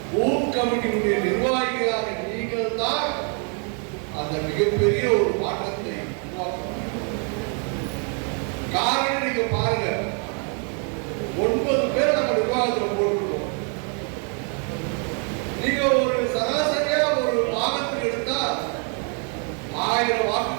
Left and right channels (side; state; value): left; quieter; 39.7 dB